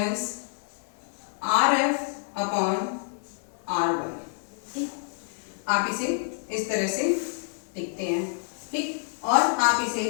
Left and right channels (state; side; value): silent; right; 60 dB below the other